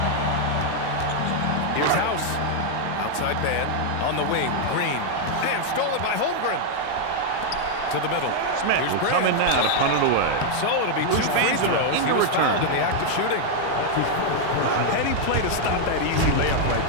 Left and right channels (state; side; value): different; both; correlation 0.00